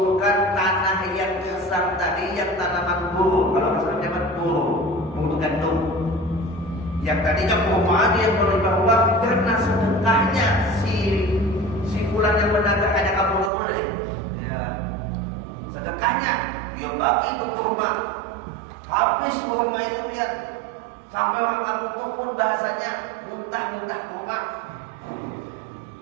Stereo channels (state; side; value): drops out; left; at 13.5 s